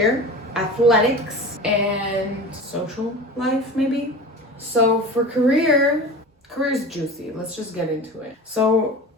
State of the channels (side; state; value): both; normal; correlation 0.34